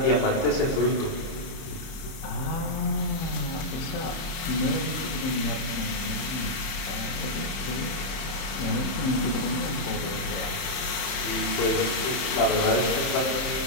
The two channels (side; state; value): right; late; 30 ms